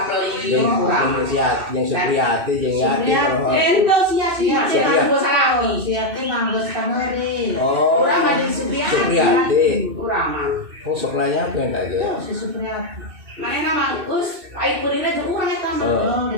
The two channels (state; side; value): late; left; 2.6 ms